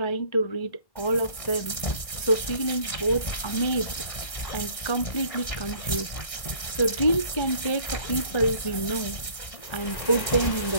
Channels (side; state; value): right; late; 1.6 ms